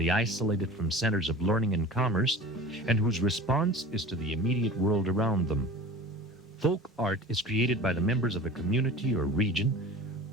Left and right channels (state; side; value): normal; both; correlation 0.37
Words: isolated from centers of learning and commerce, and whose response is to the immediate world around them. Folk art is created by the members of a community or region,